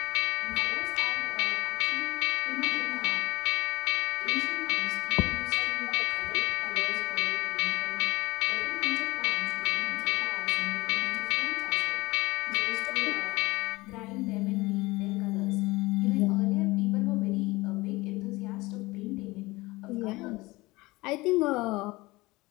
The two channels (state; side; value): quieter; right; 21.3 dB